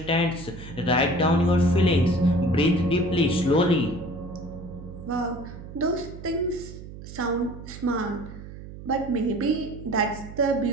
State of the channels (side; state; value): right; noise; hum, 13 dB below the sound